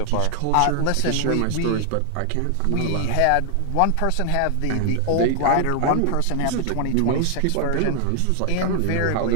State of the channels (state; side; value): different; both; correlation 0.00